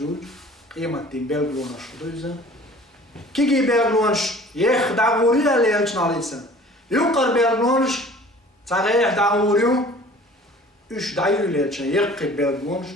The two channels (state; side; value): normal; both; correlation 0.47